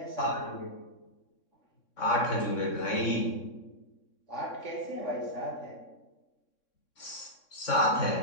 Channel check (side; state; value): right; late; 3.6 ms